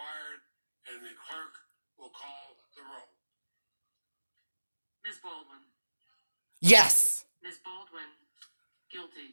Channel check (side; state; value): both; inverted; correlation -1.00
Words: and the clerk will call the roll. Ms. Baldwin. Yes. Ms. Baldwin.